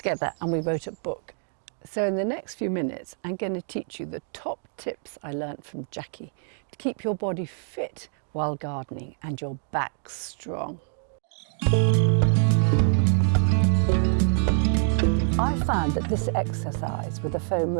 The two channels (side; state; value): left; silent; 61 dB below the other